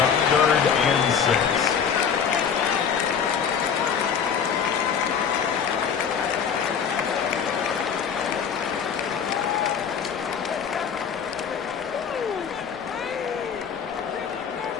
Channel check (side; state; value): right; quieter; 7.2 dB